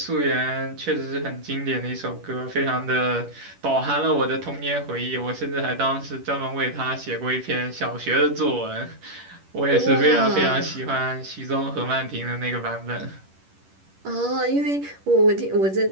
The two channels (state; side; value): late; left; 10 ms